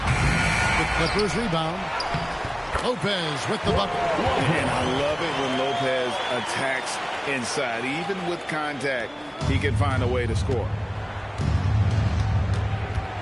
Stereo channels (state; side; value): identical; both; correlation 1.00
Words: The Clippers rebound. Lopez with the bucket. And I love it when Lopez attacks inside. Even with contact, he can find a way to score.